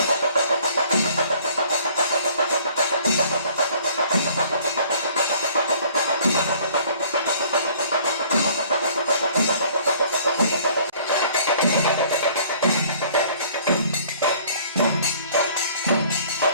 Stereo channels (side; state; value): both; inverted; correlation -0.54